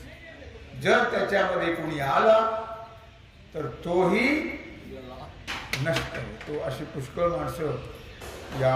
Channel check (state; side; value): identical; both; correlation 1.00